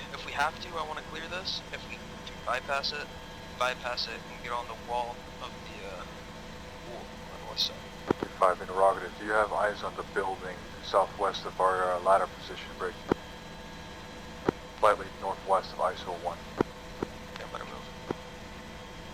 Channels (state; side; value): identical; both; correlation 1.00